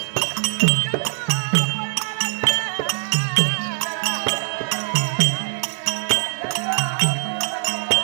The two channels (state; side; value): silent; left; digital silence